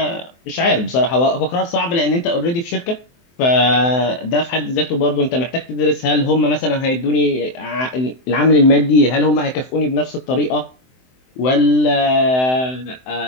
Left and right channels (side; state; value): right; late; 23 ms